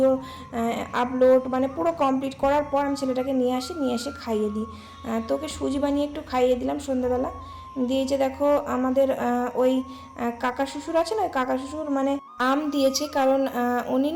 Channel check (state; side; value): identical; both; correlation 1.00